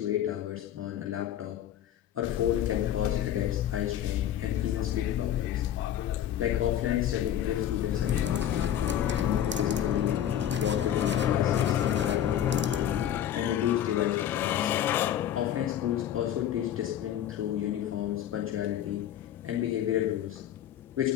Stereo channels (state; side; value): quieter; right; 10.7 dB